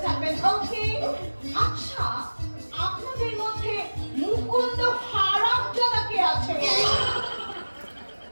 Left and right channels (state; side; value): inverted; both; correlation -1.00